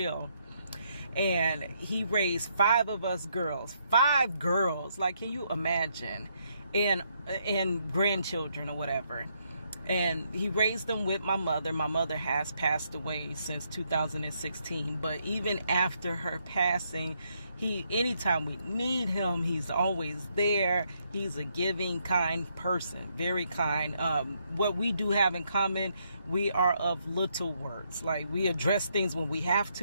And he raised 5 of us girls, 5 girls, like can you imagine? And grandchildren or whatever. And he raised them with my mother. My mother has passed away since 2016, but even after her passing, anytime we need him, he's always there. He's a giving, kind person, very kind. What we do have in common, we are of little words. Like we address things when we have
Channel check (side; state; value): both; inverted; correlation -0.75